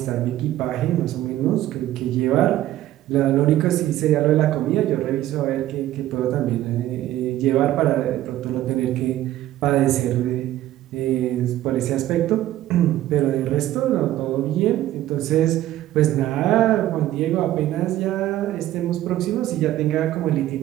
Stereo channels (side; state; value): left; quieter; 14.0 dB